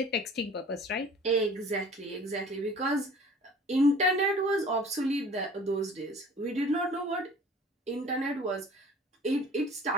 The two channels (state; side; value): normal; both; correlation 0.47